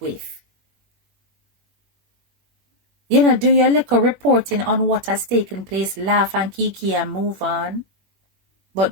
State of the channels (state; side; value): late; left; 21 ms